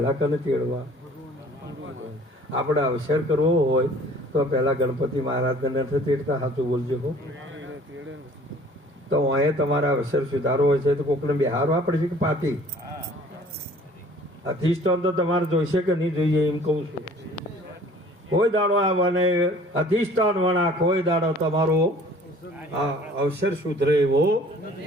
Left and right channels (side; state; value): both; normal; correlation 0.51